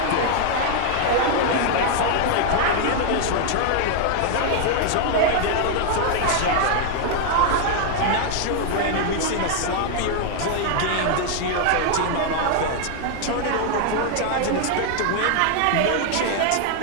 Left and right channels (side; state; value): both; different; correlation 0.00